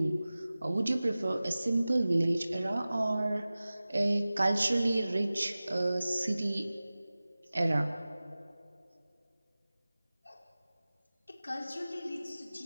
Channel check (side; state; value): both; inverted; correlation -0.97